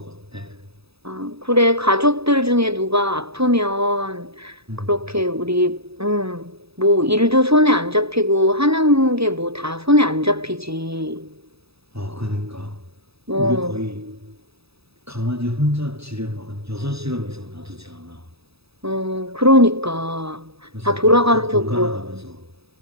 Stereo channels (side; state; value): left; late; 0.78 ms